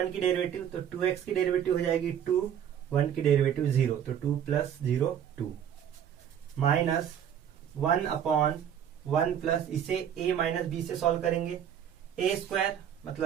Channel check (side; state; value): left; quieter; 9.3 dB